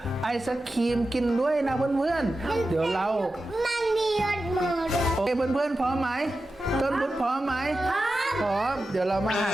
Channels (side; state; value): both; normal; correlation 0.92